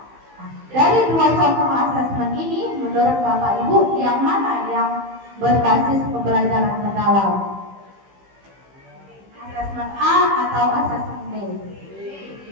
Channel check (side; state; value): left; late; 15 ms